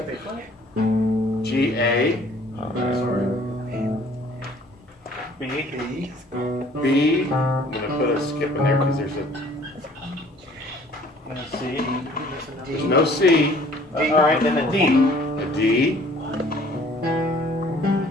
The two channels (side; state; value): both; normal; correlation 0.55